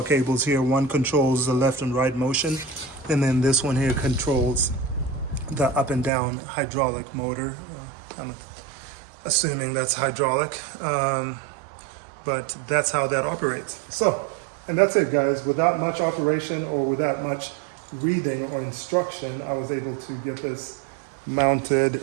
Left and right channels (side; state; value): left; drops out; at 6.1 s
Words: cables here. One controls the left and right motion, and then this one here controls the up and down hydraulic motor. I'm assuming that's hydraulic, but that's how that operates. So, and that's it, guys. Without much operation or without much reading or instruction, I was able to get this mounted